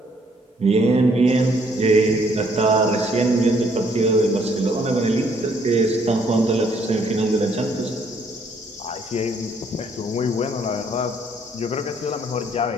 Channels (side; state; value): both; normal; correlation 0.66